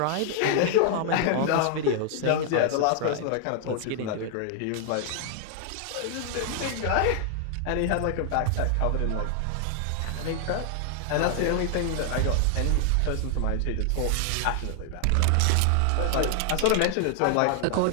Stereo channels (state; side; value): different; both; correlation 0.00